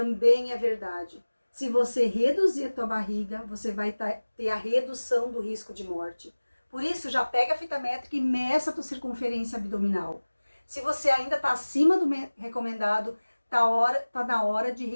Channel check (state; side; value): inverted; both; correlation -1.00